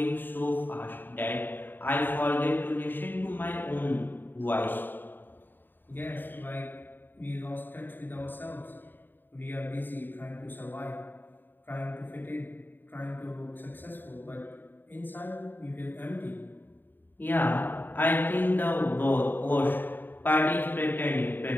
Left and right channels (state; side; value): late; right; 0.092 ms